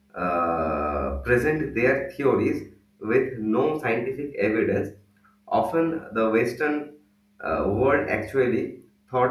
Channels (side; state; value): both; identical; correlation 1.00